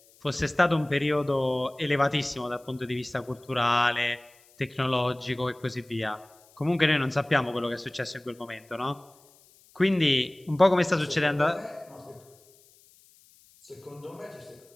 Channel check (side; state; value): left; noise; hiss, 29 dB below the sound